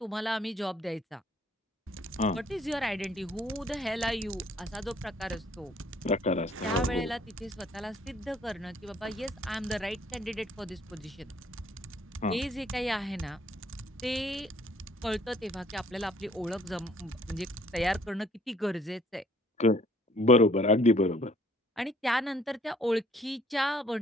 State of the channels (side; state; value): both; normal; correlation 0.61